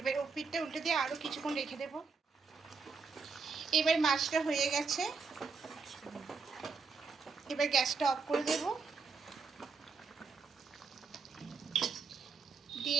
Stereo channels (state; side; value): quieter; left; 5.0 dB